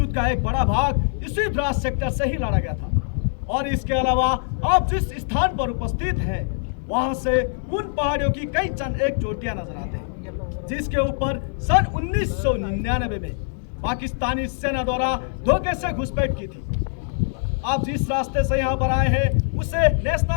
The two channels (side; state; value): right; silent; digital silence